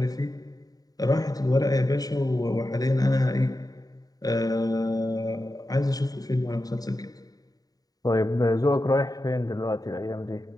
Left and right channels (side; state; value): right; late; 0.18 ms